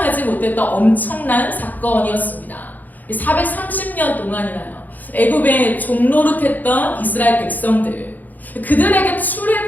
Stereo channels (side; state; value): right; late; 0.083 ms